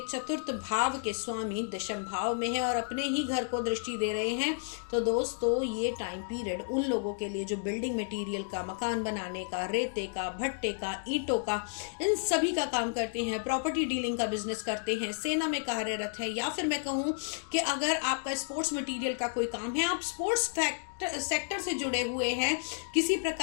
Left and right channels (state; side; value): silent; right; digital silence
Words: चतुर्थ भाव के स्वामी दशम भाव में है और अपने ही घर को दृष्टि दे रहे हैं। तो दोस्तों ये टाइम पीरियड उन लोगों के लिए जो बिल्डिंग मटेरियल का, मकान बनाने का, रेते का, भट्टे का, ईंटों का, इन सभी का काम करते हैं, प्रॉपर्टी डीलिंग का बिजनेस करते हैं, सेना में कार्यरत है, या फिर मैं कहूँ कि अगर आपका स्पोर्ट्स मटेरियल का कोई काम है, आप स्पोर्ट्स सेक्टर से जुड़े हुए हैं, किसी